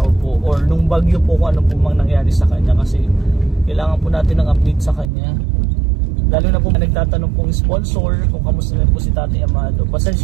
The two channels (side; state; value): left; drops out; at 5.1 s